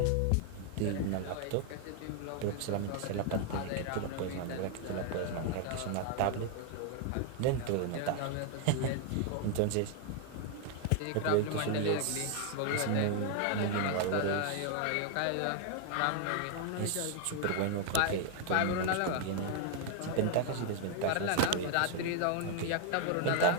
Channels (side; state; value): both; different; correlation 0.00